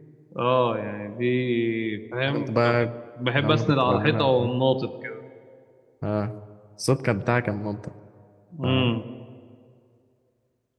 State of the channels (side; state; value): both; identical; correlation 1.00